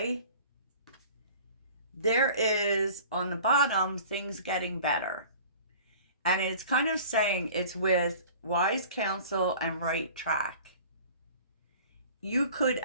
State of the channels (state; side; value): inverted; both; correlation -0.45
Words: there is on the bottom things getting better. And it's kind of saying it's with wise counsel and right track. You could